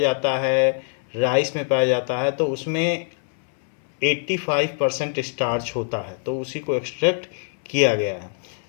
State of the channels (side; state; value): right; silent; 60 dB below the other